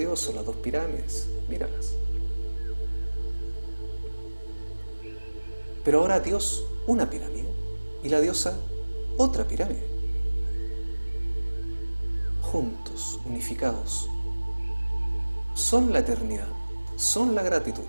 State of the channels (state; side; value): inverted; both; correlation -1.00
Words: o las dos pirámides, míralas. Pero ahora Dios, una pirámide, y la diosa, otra pirámide. Juntos, unificados, son la eternidad, son la gratitud,